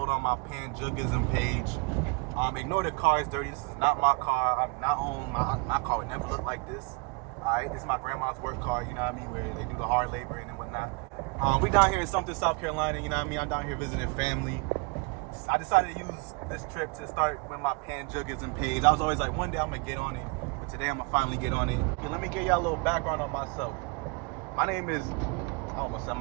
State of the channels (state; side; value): quieter; left; 31.7 dB